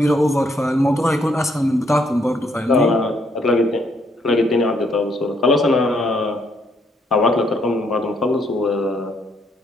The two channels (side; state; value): both; normal; correlation 0.71